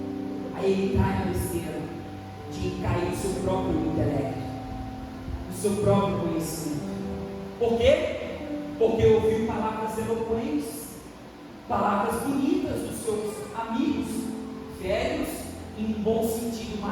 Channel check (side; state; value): both; identical; correlation 1.00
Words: Aí ele cai na besteira de cair no seu próprio intelecto, no seu próprio conhecimento. Por quê? Porque ouviu palavras eloquentes, palavras bonitas dos seus amigos, velhos, em bom sentido,